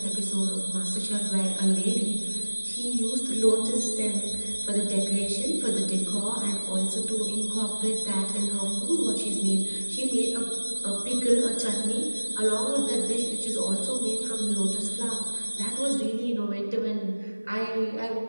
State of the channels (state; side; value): inverted; both; correlation -1.00